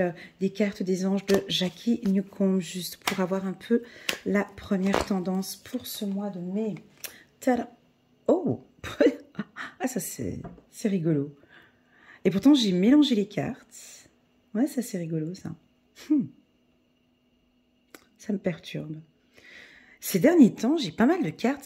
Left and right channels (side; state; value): both; identical; correlation 1.00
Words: des cartes des anges de Jackie Newcomb, juste pour avoir un peu la première tendance pour ce mois de mai. Tada! Oh! Ah, ça c'est rigolo. Et pourtant, j'ai mélangé les cartes. Ouais, ça c'est rigolo, ça. Ça me perturbe. Ces derniers temps, j'ai pas mal de cartes